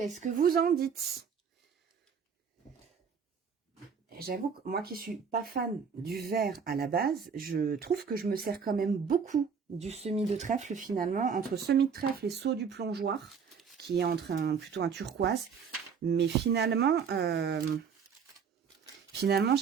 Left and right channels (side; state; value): left; quieter; 6.4 dB